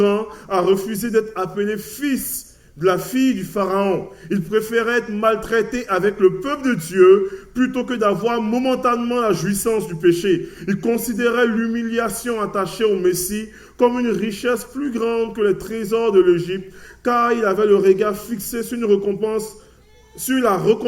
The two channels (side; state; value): both; identical; correlation 1.00